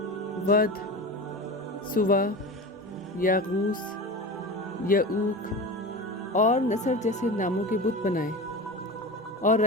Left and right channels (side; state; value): both; normal; correlation 0.30